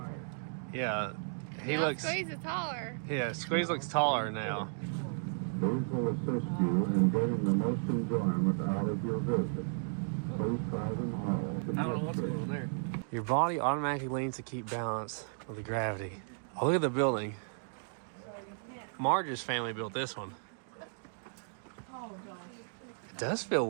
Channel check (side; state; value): left; silent; digital silence